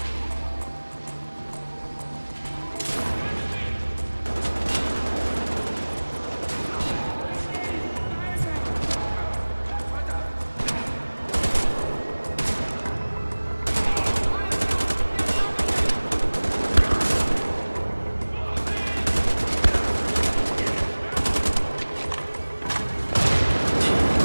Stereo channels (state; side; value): inverted; both; correlation -1.00